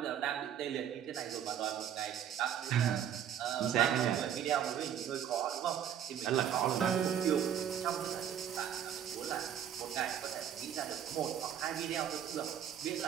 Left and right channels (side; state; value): left; quieter; 9.4 dB